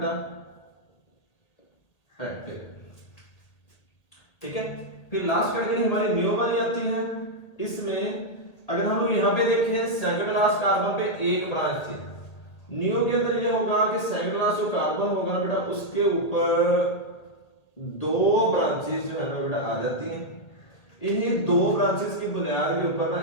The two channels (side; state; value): right; late; 2.0 ms